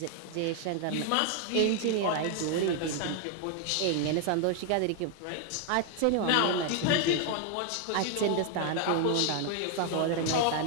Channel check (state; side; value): different; both; correlation 0.00